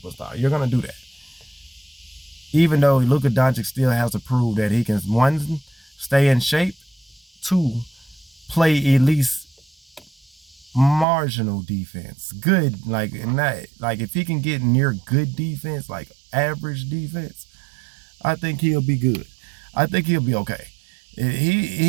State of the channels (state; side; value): drops out; left; at 11.1 s